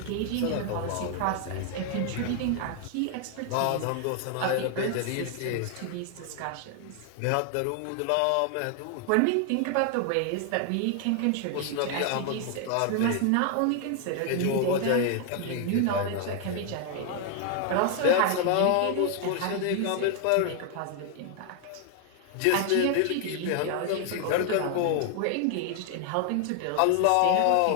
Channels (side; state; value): both; different; correlation 0.00